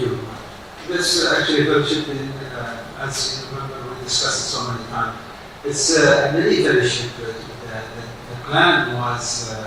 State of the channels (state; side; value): identical; both; correlation 1.00